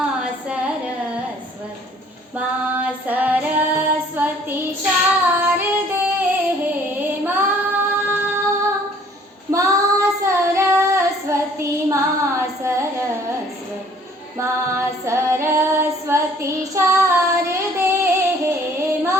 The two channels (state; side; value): normal; both; correlation 0.57